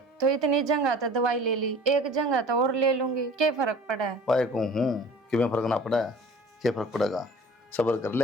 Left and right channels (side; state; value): both; normal; correlation 0.45